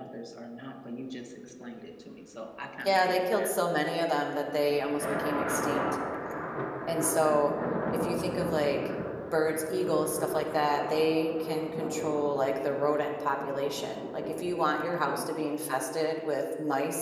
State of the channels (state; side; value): identical; both; correlation 1.00